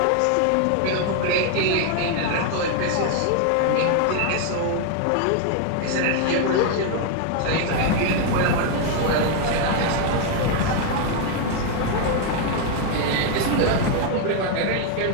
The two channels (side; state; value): both; different; correlation 0.01